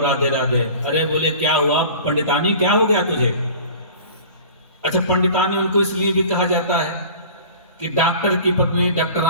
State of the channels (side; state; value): both; inverted; correlation -0.41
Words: राधे। अरे बोले क्या हुआ पंडितानी, क्या हो गया तुझे? अच्छा, पंडितानी उनको इसलिए भी कहा जाता है कि डॉक्टर की पत्नी